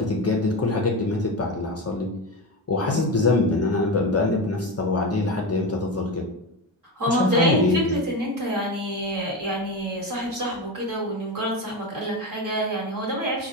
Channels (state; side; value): normal; both; correlation 0.20